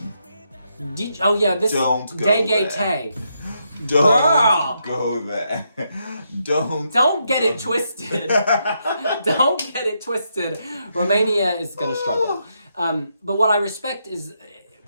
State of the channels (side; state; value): both; inverted; correlation -0.80